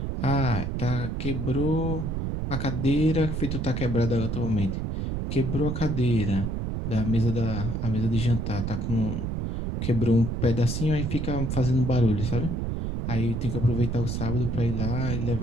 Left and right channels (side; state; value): right; noise; rumble, 2 dB below the sound